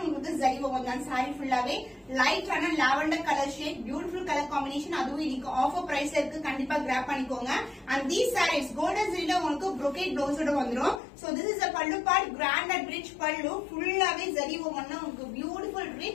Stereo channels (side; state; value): right; drops out; at 11.0 s